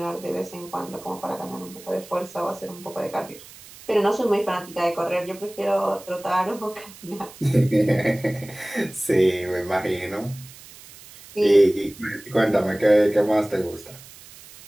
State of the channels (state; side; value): noise; right; hiss, 19 dB below the sound